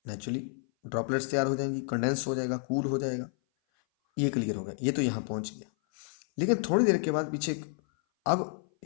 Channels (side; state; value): right; silent; 56 dB below the other